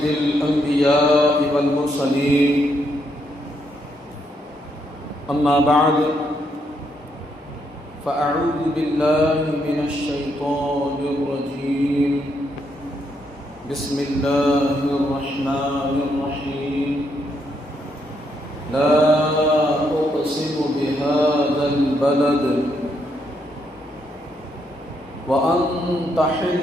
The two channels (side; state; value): both; normal; correlation 0.77